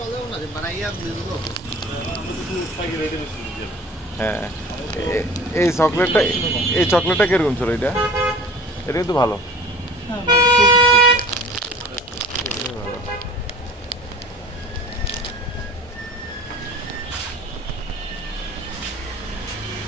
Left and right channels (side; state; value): both; normal; correlation 0.43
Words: পাইকারি রেটে বেশি দিচ্ছে। হ্যাঁ এই চকলেটটা এই চকলেটটা কিরকম ছিল এটা? এটা কিন্তু ভালো। হ্যাঁ